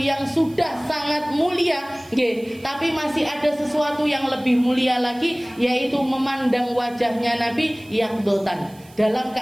sudah sangat mulia, tapi masih ada sesuatu yang lebih mulia lagi, yaitu memandang wajahnya Nabi yang dotan dalam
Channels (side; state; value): right; noise; hiss, 25 dB below the sound